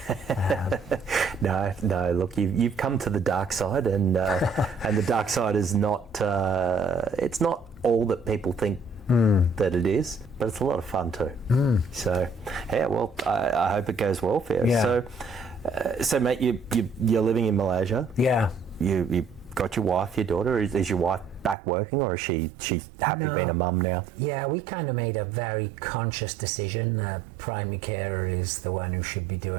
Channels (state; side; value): drops out; left; at 21.6 s